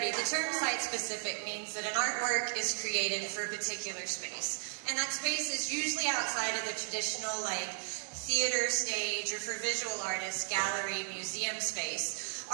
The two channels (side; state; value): left; silent; 55 dB below the other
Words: the term site-specific means that an artwork is created for a particular space. And that space is usually outside of the traditional, like, theater stage, or for visual artists, gallery, museum space.